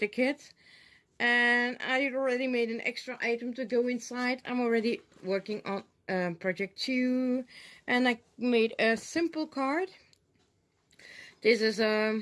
kit. And I already made an extra item to go inside. I'm already working on project 2, and I made a simple card. This is a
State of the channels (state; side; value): identical; both; correlation 1.00